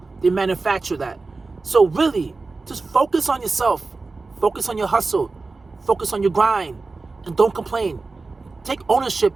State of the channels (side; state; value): left; quieter; 3.8 dB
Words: They manufacture that. So really, just focus on yourself. Focus on your hustle. Focus on your grind. And don't complain. Take ownership